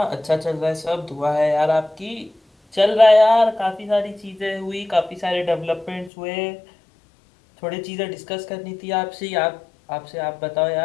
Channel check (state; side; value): drops out; right; at 6.1 s